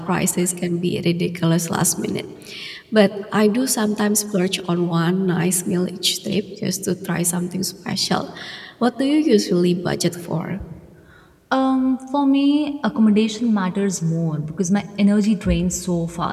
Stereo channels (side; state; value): both; identical; correlation 1.00